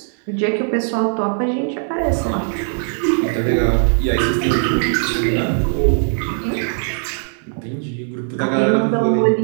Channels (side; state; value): left; silent; digital silence